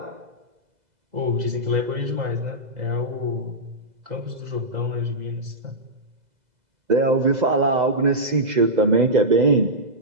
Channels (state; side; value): late; left; 2.0 ms